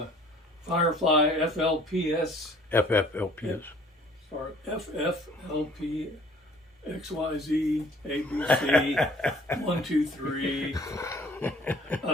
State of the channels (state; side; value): normal; both; correlation 0.54